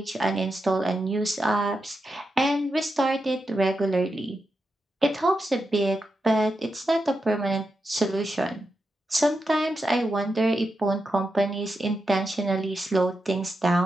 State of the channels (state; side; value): normal; both; correlation 0.87